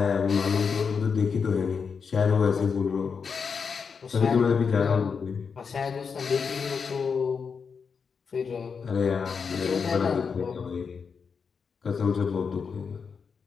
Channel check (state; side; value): quieter; right; 5.8 dB